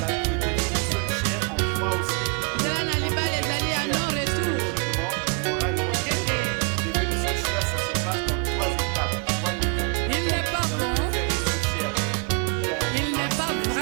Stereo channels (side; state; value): left; quieter; 35.6 dB